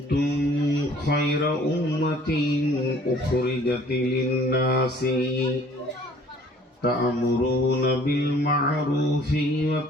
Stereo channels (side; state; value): both; normal; correlation 0.54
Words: خير أمة أخرجت للناس تأمرون بالمعروف